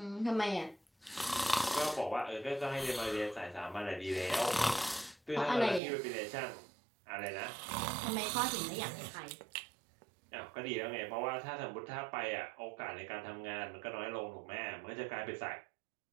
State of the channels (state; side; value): drops out; left; at 5.8 s